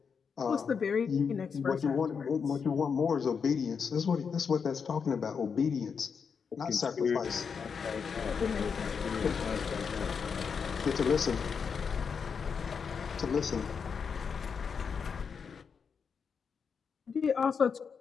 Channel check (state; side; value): quieter; right; 6.1 dB